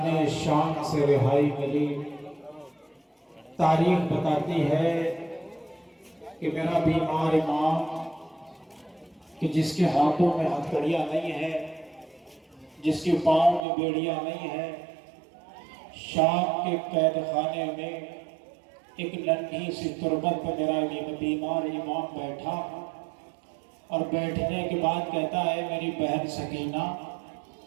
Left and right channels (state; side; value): drops out; left; at 13.6 s